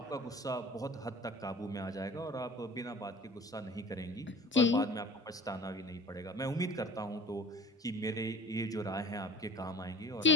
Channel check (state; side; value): normal; both; correlation 0.43